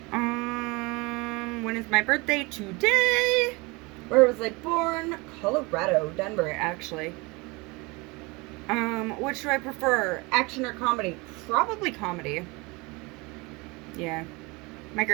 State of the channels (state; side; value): quieter; left; 25.8 dB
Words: When is my birthday? Today! Where was I born? Colorado. Denver, actually. Which do I prefer? Action or comedy? Probably comedy. Yeah. My